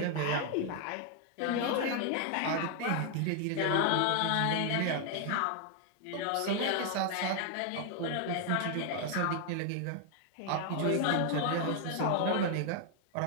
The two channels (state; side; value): different; both; correlation 0.00